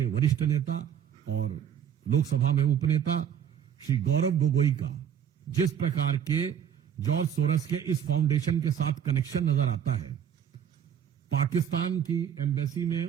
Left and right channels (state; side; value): quieter; left; 8.8 dB